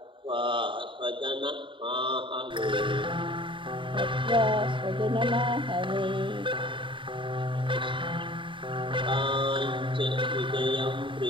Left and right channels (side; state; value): left; late; 0.24 ms